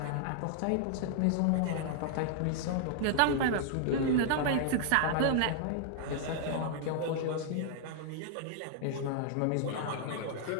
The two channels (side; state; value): both; different; correlation -0.01